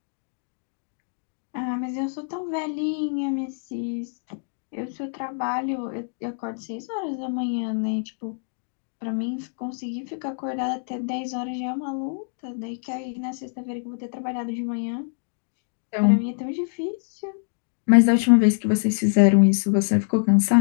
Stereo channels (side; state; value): right; silent; digital silence